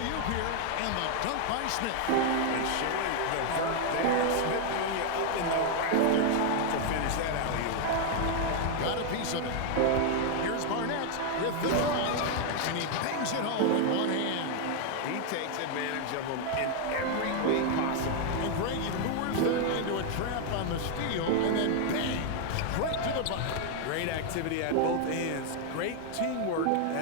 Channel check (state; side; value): different; both; correlation 0.00